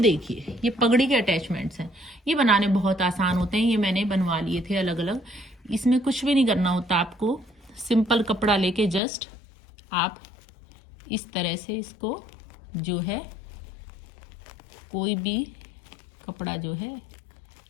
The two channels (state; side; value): drops out; right; at 9.0 s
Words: ये पगड़ी के अटैचमेंट्स हैं, ये बनाने बहुत आसान होते हैं। ये मैंने बनवा लिए थे अलग अलग, इसमें कुछ भी नहीं करना होता आपको, सिंपल कपड़ा लेके जस्ट आप इस तरह से इसको जो है कोई भी कपड़ा जो है